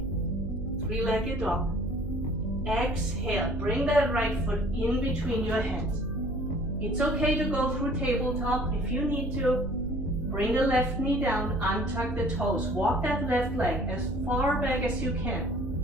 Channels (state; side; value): noise; right; hum, 6 dB below the sound